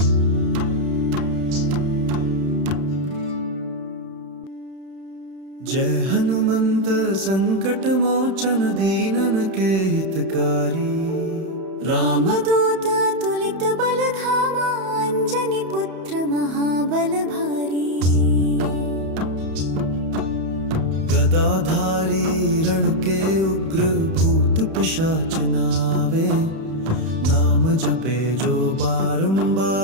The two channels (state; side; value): late; left; 31 ms